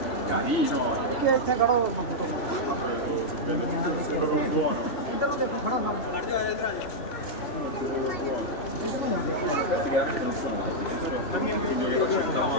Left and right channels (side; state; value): right; late; 3.0 ms